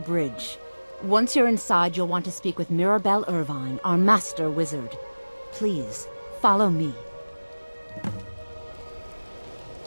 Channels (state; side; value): inverted; both; correlation -1.00